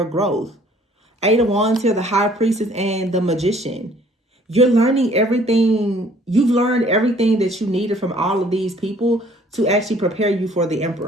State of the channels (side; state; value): both; normal; correlation 0.57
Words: growth. 8 of Wands here, the High Priestess and the Magician. You're learning everything. You've learned everything that you needed from all of these people to actually prepare you for the